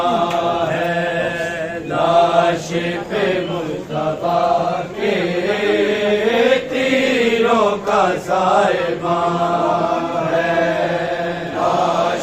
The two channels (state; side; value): identical; both; correlation 1.00